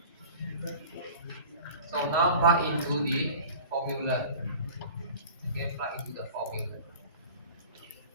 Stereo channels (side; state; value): both; inverted; correlation -0.42